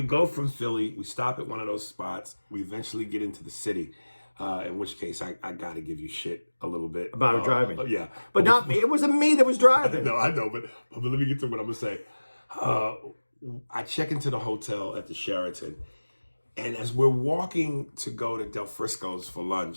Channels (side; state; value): both; inverted; correlation -1.00